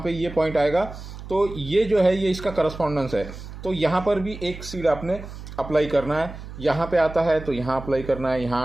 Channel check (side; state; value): right; noise; hum, 12 dB below the sound